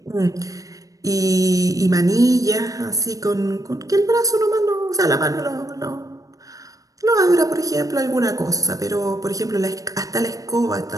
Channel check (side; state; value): left; late; 0.17 ms